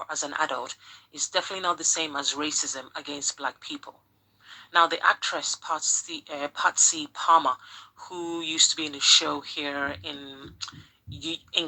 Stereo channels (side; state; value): both; identical; correlation 1.00